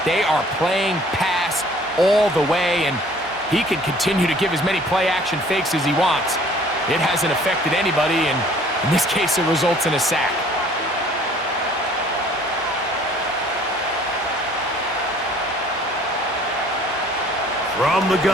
They are playing pass all the way, and he can continue to give as many play-action fakes as he wants. It hasn't affected anybody, and in this case, it results in a sack. From the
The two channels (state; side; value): normal; both; correlation 0.54